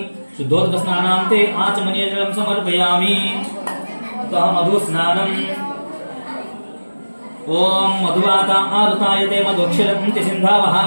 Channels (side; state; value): both; inverted; correlation -1.00